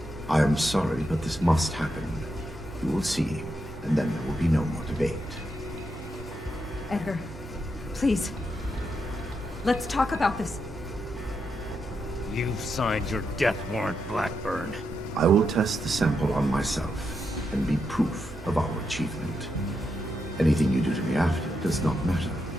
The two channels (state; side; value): noise; right; hum, 16 dB below the sound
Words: I am sorry, but this must happen. You will see, and then there will be no more debate. Edgar, please. Let's talk about this. You've signed your death warrant, Blackburn. I will test the sample on myself and be proof of our achievement. Anything you do to me after does not matter.